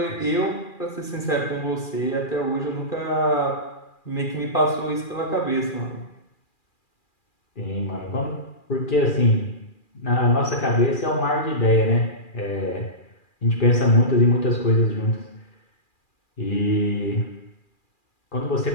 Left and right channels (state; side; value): late; right; 2.4 ms